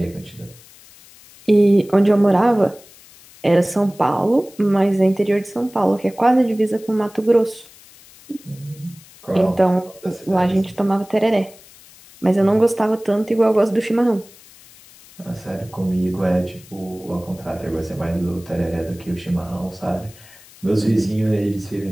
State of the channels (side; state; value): left; noise; hiss, 23 dB below the sound